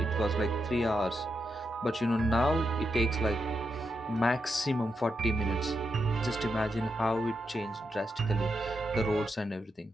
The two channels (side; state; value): both; normal; correlation 0.85